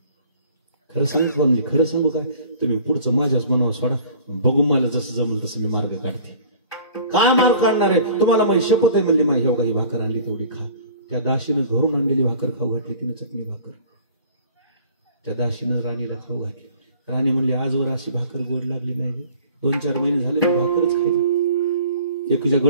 खरं सांगू म्हणली, खरं सांगू काय, तुम्ही पुढचं माझ्याच मनावर सोडा, बघू मला जसं जमल तसं मी मार्ग काढते. काय मार्ग काढणार आहे तुम्हाला, माझी शपथ आहे म्हणली. माझी ही भाकर आणली तेवढी खा. त्या दाशीनं घरून आणलेली भाकर खाऊ घातली, तिनं चटणी भाकर त्या दाशीनं राणीला खाऊ घातली. राणी म्हणली, आजवर अशी भाकर गोड लागली नाही. 2-4 महिने झाले मी भाकरच खायची. एकीच्या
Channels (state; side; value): inverted; both; correlation -0.48